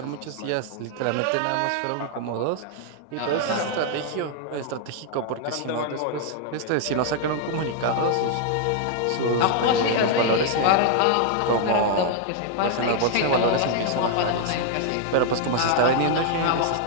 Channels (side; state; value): both; different; correlation 0.00